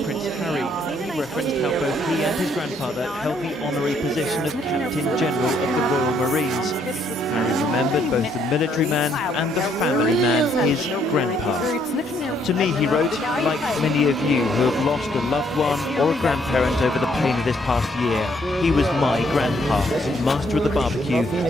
Prince Harry. He referenced how both he and his grandfather held the honorary position of Captain General of the Royal Marines. Harry remembered both the military man and the family man, his grandpa. To me, he wrote, like many of you who have lost a loved one or a grandparent over the pain of this past year, he was my grandpa, master of the barbecue,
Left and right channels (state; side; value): normal; both; correlation 0.69